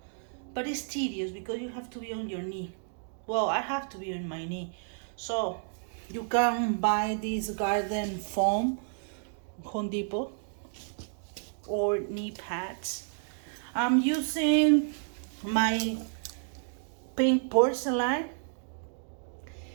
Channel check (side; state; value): left; silent; digital silence